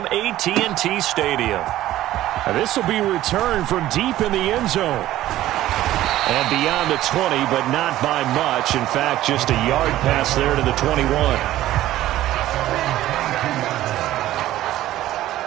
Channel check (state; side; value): quieter; left; 14.4 dB